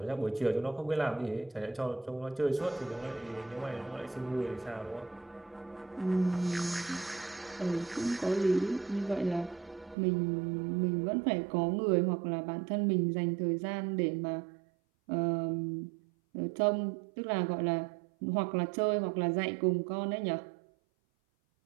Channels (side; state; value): left; drops out; at 10.0 s